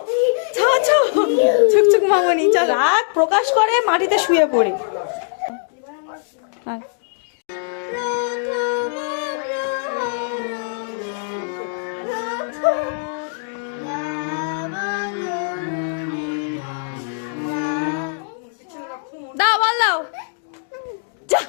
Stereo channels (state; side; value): silent; right; digital silence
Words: ছুকছুক মামনি রাগ প্রকাশ করে মাটিতে শুয়ে পড়ে। দাও বল দাও, যা